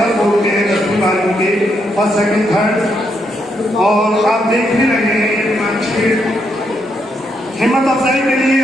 बोर्ड के 10वीं 12वीं के फर्स्ट सेकंड थर्ड। और आप देख भी रहे हैं अच्छी हिम्मत अफजाई के लिए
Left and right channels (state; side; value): normal; both; correlation 0.78